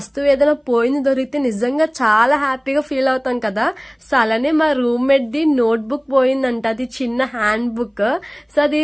ఏదైనా పోయింది దొరికితే నిజంగా చాలా హ్యాపీగా ఫీల్ అవుతాం కదా. సో అలానే మా రూమ్మేట్ ది నోట్ బుక్ పోయిందంట, అది చిన్న హ్యాండ్ బుక్. సో అది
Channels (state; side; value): identical; both; correlation 1.00